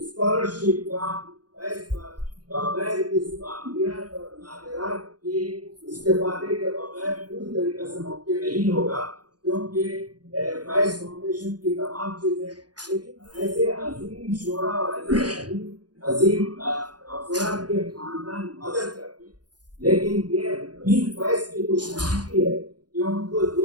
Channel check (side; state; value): left; late; 0.69 ms